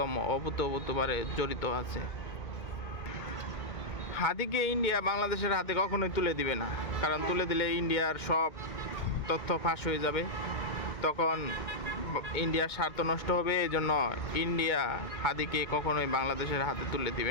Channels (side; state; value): right; late; 2.2 ms